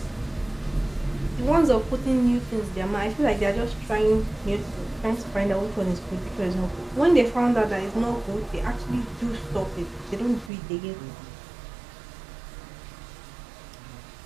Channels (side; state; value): left; drops out; at 10.5 s